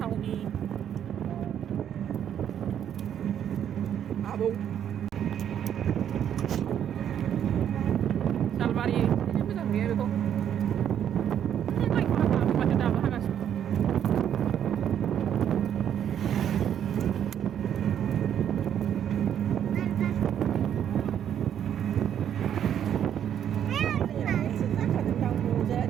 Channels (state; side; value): quieter; left; 9.5 dB